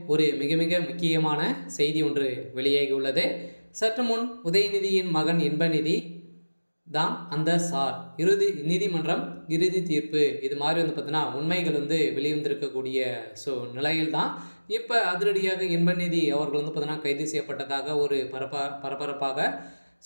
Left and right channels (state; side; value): inverted; both; correlation -1.00